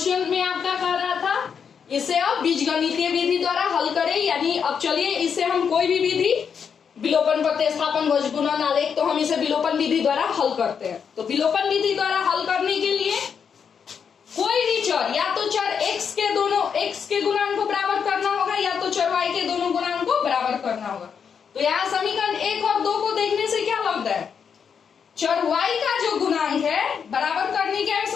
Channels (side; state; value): right; quieter; 6.9 dB